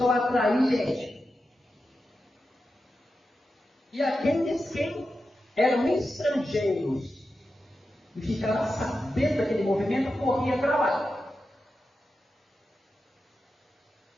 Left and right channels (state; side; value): normal; both; correlation 0.90